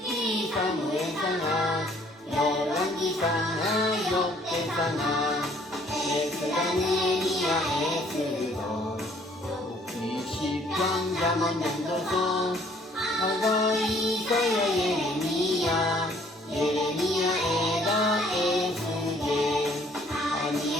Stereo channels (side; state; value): both; normal; correlation 0.60